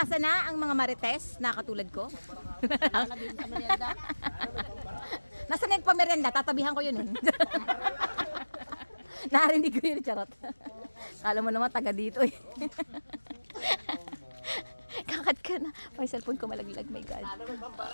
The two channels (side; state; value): both; inverted; correlation -1.00